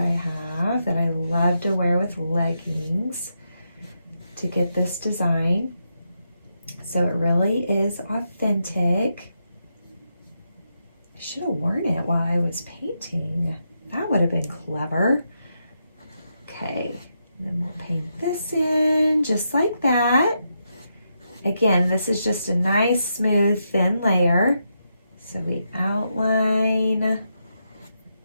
have that I love to wear with leggings to get this design. So it really is authentic. I should have worn it while I was painting. That would have been clever. Okay, and then we'll paint this in just like that. Again, this is just a nice, smooth, thin layer. So we outline,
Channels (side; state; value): both; inverted; correlation -0.83